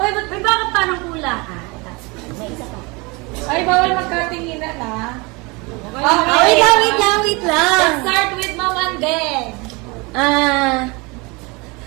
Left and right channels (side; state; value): left; quieter; 26.9 dB